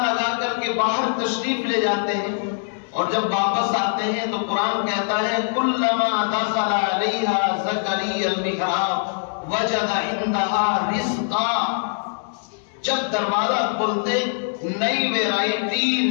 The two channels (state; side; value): silent; right; 64 dB below the other